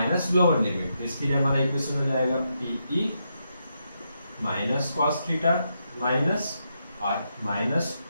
lower limit. तो इसके लिए हमारा इक्वेशन हो जाएगा PE -cos थीटा माइनस, और माइनस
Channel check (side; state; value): both; inverted; correlation -0.82